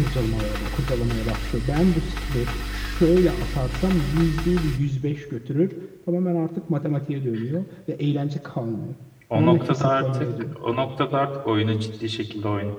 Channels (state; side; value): identical; both; correlation 1.00